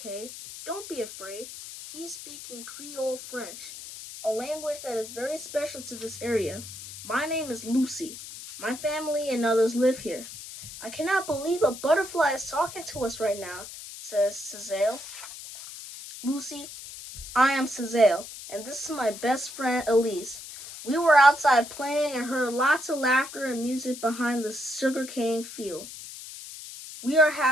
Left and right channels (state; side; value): noise; left; hiss, 12 dB below the sound